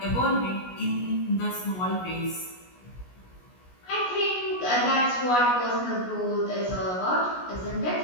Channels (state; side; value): late; right; 16 ms